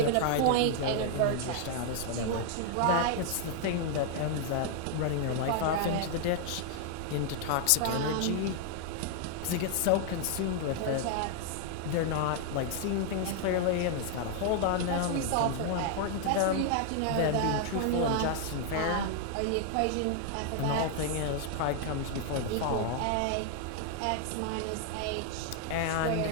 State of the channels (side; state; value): both; different; correlation 0.00